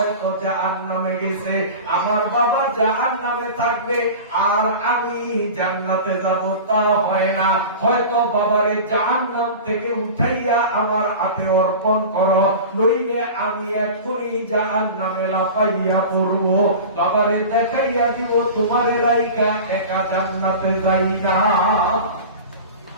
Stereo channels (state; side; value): inverted; both; correlation -0.34